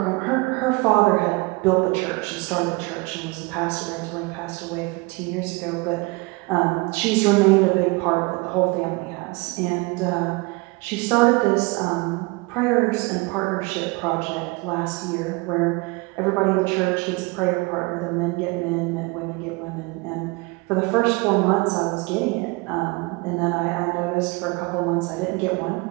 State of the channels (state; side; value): quieter; left; 26.1 dB